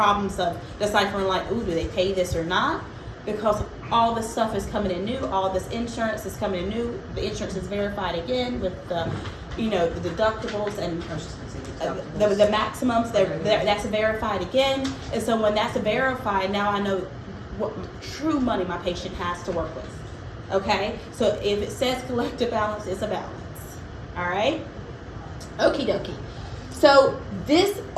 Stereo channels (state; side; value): identical; both; correlation 1.00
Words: of deciphering like, ooh, do they pay this or not? Because all this stuff is coming in new. All this insurance is coming in new. The insurance is verified again with the, the deductibles and the maximums. That's verified again. And so when that's verified, now I know what true money my patient has to work with. Okay? So if it says collective balance, it's a balance. All right? Okie dokie. So this